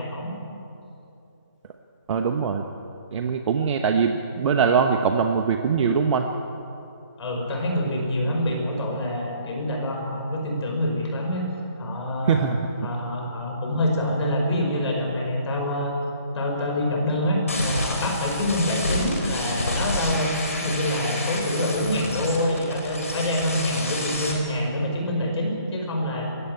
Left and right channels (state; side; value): inverted; both; correlation -0.54